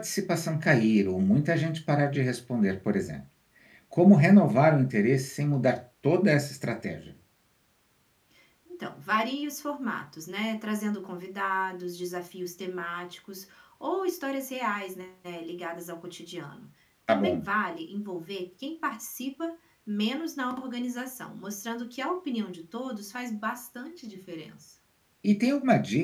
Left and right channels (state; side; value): identical; both; correlation 1.00